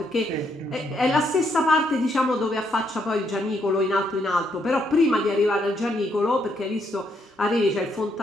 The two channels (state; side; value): normal; both; correlation 0.75